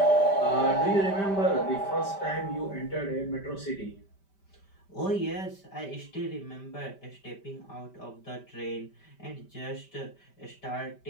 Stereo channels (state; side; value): late; right; 5.1 ms